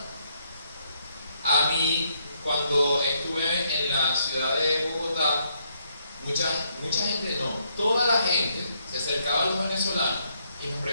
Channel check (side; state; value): both; inverted; correlation -0.73